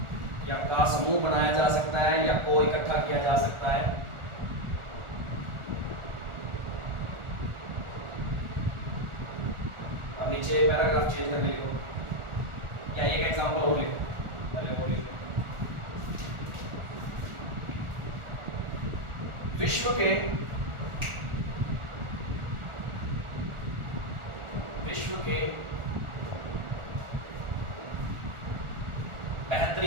या का समूह बनाया जा सकता है या को इकट्ठा किया जा सकता है। अब नीचे पैराग्राफ चेंज करके लिखो या एक एग्जांपल और लिखो, पहले वो लिखो। विश्व के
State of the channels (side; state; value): left; late; 1.4 ms